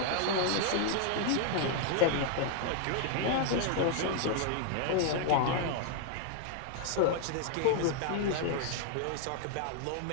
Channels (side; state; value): both; different; correlation 0.00